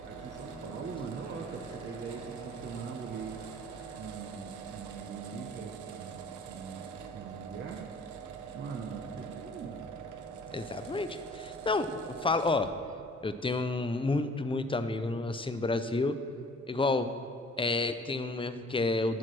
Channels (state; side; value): normal; both; correlation 0.52